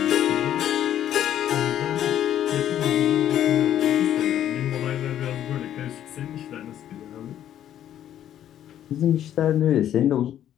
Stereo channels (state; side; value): quieter; right; 11.0 dB